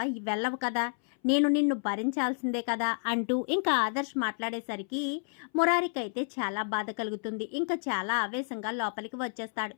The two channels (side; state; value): right; silent; 58 dB below the other